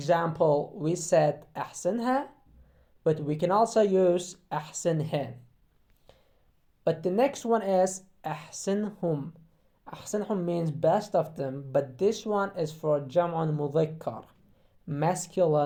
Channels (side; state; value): both; identical; correlation 1.00